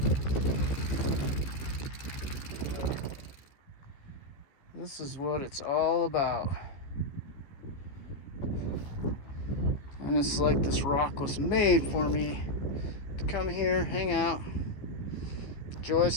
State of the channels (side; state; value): right; late; 15 ms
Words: This is what it's all about. And it's like this rock was made for me to come here, hang out, enjoy a